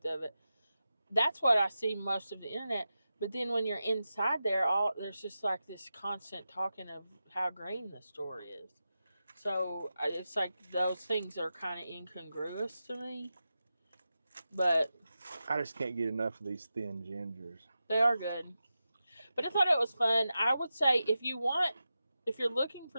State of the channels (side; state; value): both; inverted; correlation -0.92